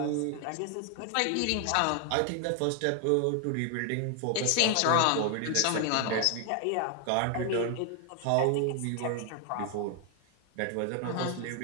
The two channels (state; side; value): different; both; correlation 0.00